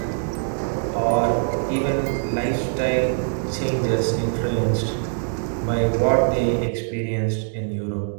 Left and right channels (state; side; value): silent; left; digital silence